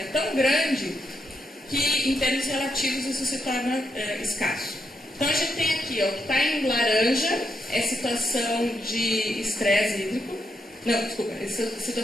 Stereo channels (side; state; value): both; normal; correlation 0.81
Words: é tão grande que, em termos relativos, isso se torna escasso. Então, a gente tem aqui, ó, o que está em laranja é situação de estresse hídrico, não, desculpa, é